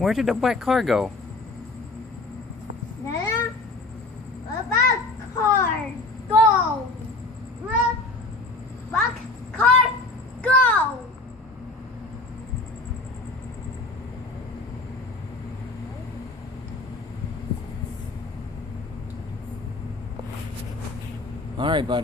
did the black car go? Nana? What about car? Go! What? Black car? Go! Alright,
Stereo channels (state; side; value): quieter; right; 3.1 dB